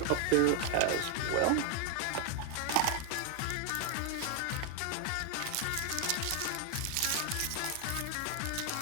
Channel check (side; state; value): both; different; correlation 0.00